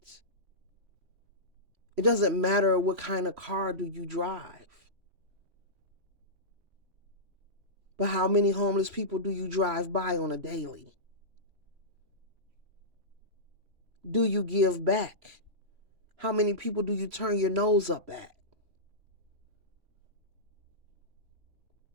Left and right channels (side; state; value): left; late; 3.0 ms